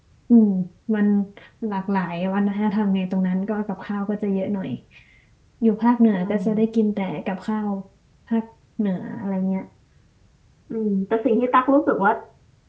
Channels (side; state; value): both; identical; correlation 1.00